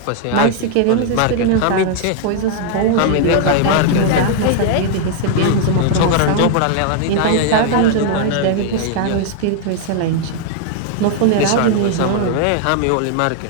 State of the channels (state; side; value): different; both; correlation 0.00